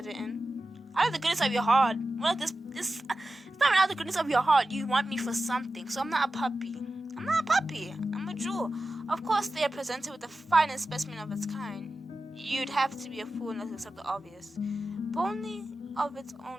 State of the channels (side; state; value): both; normal; correlation 0.94